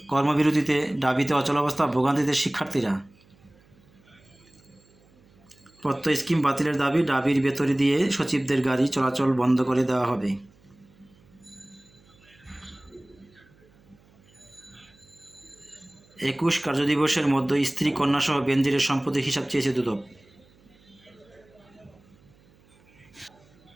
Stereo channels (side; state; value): right; noise; hum, 30 dB below the sound